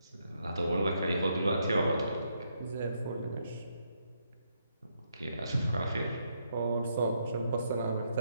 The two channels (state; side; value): inverted; both; correlation -0.77